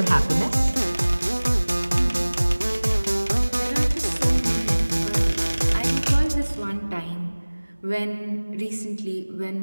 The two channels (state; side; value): inverted; both; correlation -1.00